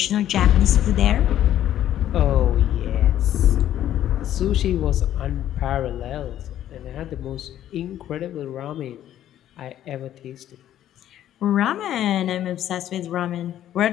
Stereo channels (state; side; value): quieter; right; 11.8 dB